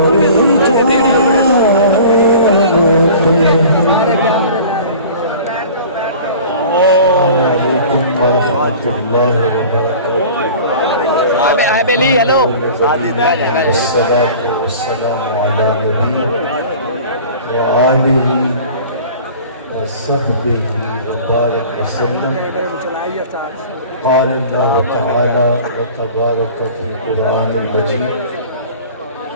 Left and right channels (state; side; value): inverted; both; correlation -0.43